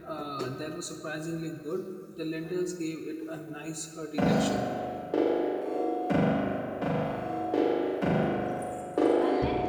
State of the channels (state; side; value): identical; both; correlation 1.00